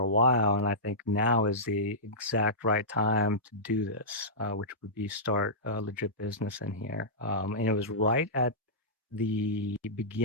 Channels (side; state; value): both; normal; correlation -0.16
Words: while, and I think now is the exact right time to do this, which would be start a legit business in here. And it was right at the